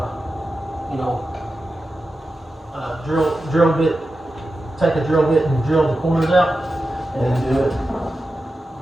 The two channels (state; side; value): normal; both; correlation 0.92